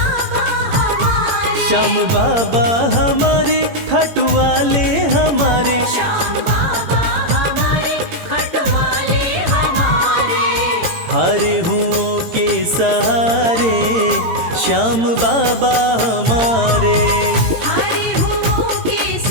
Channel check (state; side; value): late; left; 18 ms